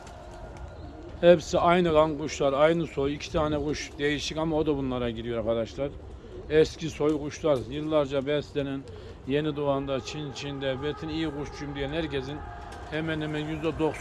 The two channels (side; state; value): both; identical; correlation 1.00